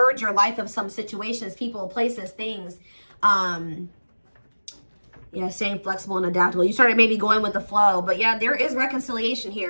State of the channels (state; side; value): inverted; both; correlation -1.00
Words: your life of some situations, people, places, things. Yeah, staying flexible and adaptable. You started maybe going with the flow, but yeah, there is reconciliation